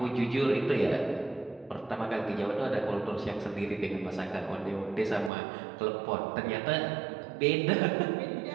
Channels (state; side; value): drops out; left; at 5.3 s